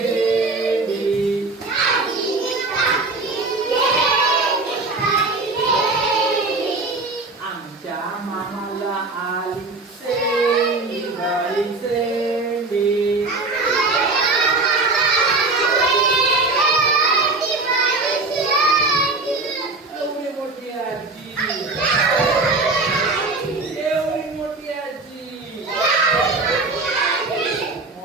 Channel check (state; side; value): quieter; left; 3.5 dB